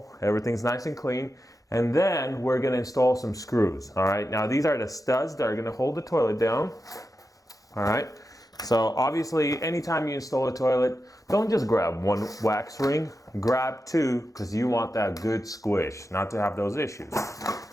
Everything's nice and clean. And then we're going to install some screws. All right. Now these are the studs that are going to hold the toilet down. All right. So obviously, anytime you install a toilet, don't just grab one wax ring. Grab two, because you want that good squish, not to have those issues.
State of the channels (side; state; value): both; normal; correlation 0.89